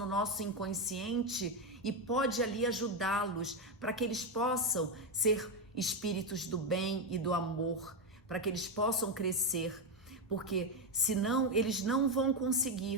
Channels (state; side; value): normal; both; correlation 0.07